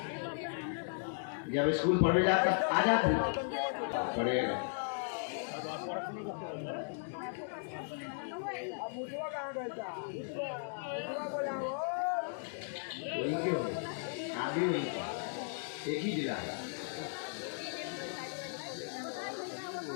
जब स्कूल पढ़ने जाता आ जाती पढ़ेगा। वही क्यों आगे वही एक ही जिला है।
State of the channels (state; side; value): silent; right; digital silence